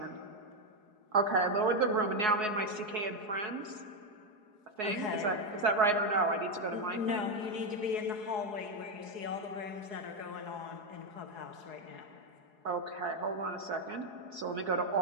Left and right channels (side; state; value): left; late; 4.8 ms